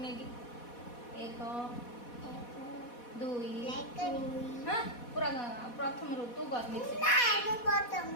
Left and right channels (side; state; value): right; late; 4.1 ms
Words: नेकी एक दुई हां पूरा प्रथम रु तू करनी छे नहीं मु प्रथम